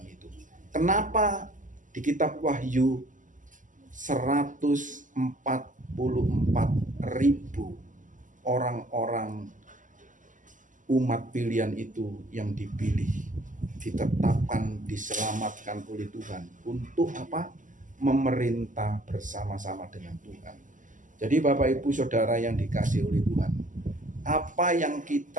itu. Kenapa di kitab Wahyu 144.000 orang-orang umat pilihan itu yang dipilih, ditetapkan, diselamatkan oleh Tuhan untuk apa? Memerintah bersama-sama dengan Tuhan. Jadi Bapak Ibu Saudara yang dikasihi oleh Tuhan, apa yang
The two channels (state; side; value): late; left; 0.37 ms